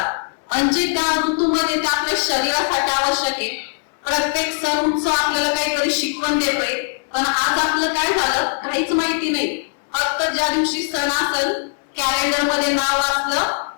म्हणजे त्या ऋतूमध्ये ते आपल्या शरीरासाठी आवश्यक आहे. प्रत्येक सण उत्सव आपल्याला काहीतरी शिकवण देतोय, पण आज आपलं काय झालं काहीच माहिती नाही. फक्त ज्या दिवशी सण असेल कॅलेंडर मध्ये नाव वाचलं,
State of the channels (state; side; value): silent; right; digital silence